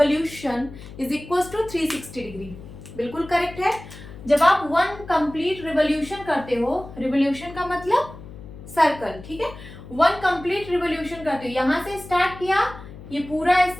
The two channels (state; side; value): noise; left; hum, 15 dB below the sound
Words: is equal to 360 degree. बिल्कुल करेक्ट है। जब आप वन कंप्लीट रिवोल्यूशन करते हो, रिवोल्यूशन का मतलब सर्कल, ठीक है। वन कंप्लीट रिवोल्यूशन करते हो, यहां से स्टार्ट किया, ये पूरा